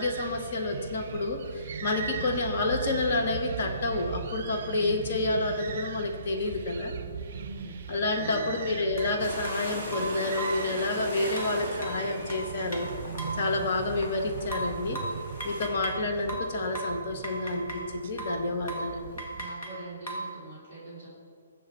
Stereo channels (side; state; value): both; inverted; correlation -0.60